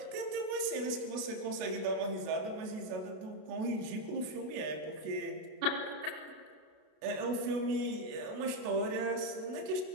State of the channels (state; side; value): late; left; 32 ms